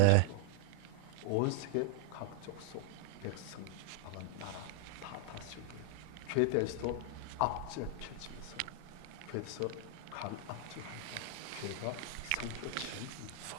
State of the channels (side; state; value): both; different; correlation 0.00